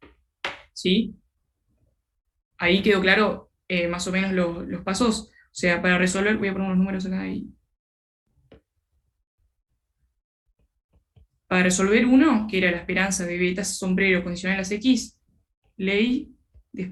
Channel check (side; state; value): both; identical; correlation 1.00